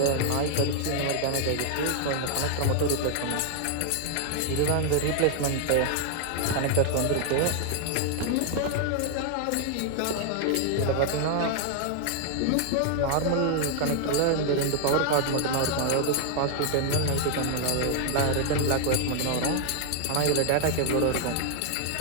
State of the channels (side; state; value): both; different; correlation 0.00